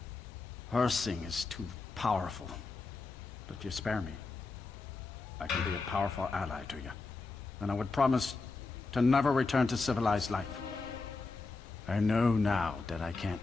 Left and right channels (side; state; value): right; quieter; 3.9 dB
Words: Hersing is too powerful. But if you spare me, I can be a powerful ally to you. And I would promise to never return to civilized life. I know now that I can't